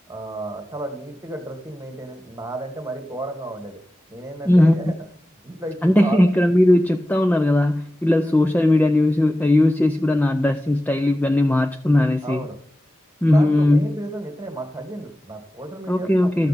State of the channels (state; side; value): normal; both; correlation 0.94